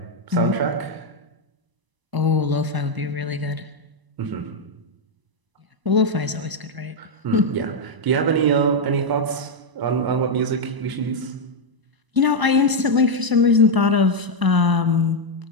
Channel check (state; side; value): late; left; 1.0 ms